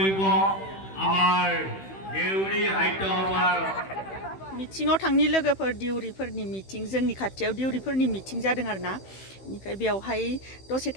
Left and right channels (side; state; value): right; late; 16 ms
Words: আমাৰ দেউৰী সাহিত্য সভাৰ मिटिङाव थांनि लोगोफोर दिउरिफोरनि मिटिं जोंनि खाथियाव दिउरिफोरनि मिटिं जादों आरोना बेनिफ्राय बेयावहाय दसे